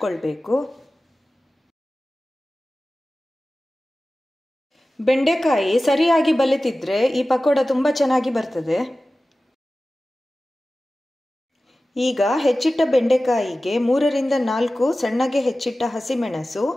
ಬೆಂಡೆಕಾಯಿ ಸರಿಯಾಗಿ ಬಲಿತಿದ್ರೆ ಈ ಪಕೋಡ ತುಂಬ ಚೆನ್ನಾಗಿ ಬರ್ತದೆ. ಈಗ ಹೆಚ್ಚಿಟ್ಟ ಬೆಂಡೆಕಾಯಿಗೆ 3 ರಿಂದ 4 ಸಣ್ಣಗೆ ಹೆಚ್ಚಿಟ್ಟ ಹಸಿಮೆಣಸು,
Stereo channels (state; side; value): normal; both; correlation 0.96